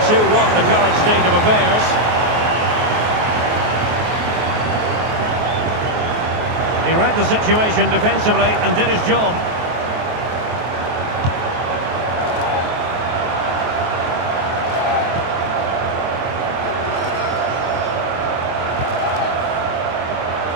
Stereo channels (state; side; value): late; left; 23 ms